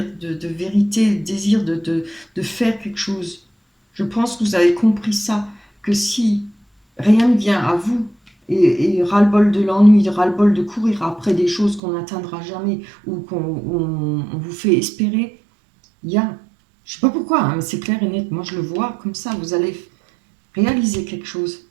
de vérité, le désir de faire quelque chose. Je pense que vous avez compris ça, que si rien ne vient à vous, et ras-le-bol de l'ennui, ras-le-bol de courir après des choses qu'on n'atteindra jamais, ou on vous fait espérer, il y a, je sais pas pourquoi, hein, mais c'est clair et net, moi je le vois comme ça, vous allez réaliser quelque chose,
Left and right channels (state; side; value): drops out; left; at 11.8 s